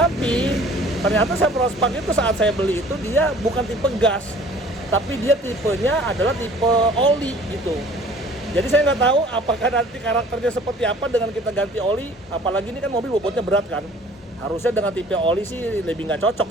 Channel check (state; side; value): normal; both; correlation 0.51